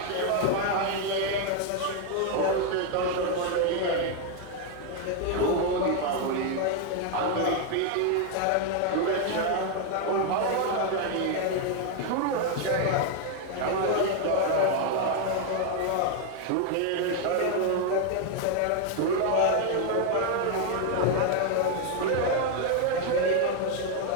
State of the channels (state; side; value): different; both; correlation 0.01